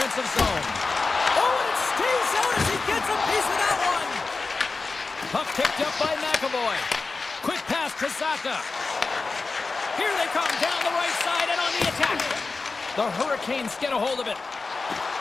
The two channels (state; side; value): quieter; right; 4.0 dB